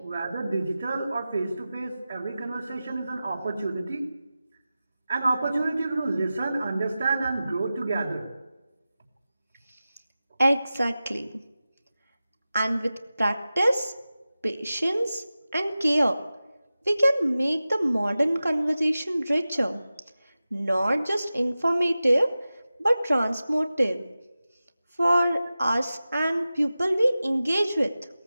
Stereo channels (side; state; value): both; inverted; correlation -0.95